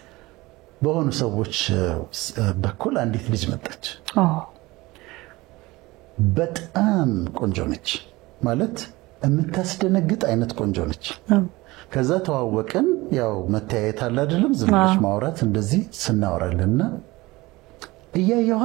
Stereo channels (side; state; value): left; quieter; 20.8 dB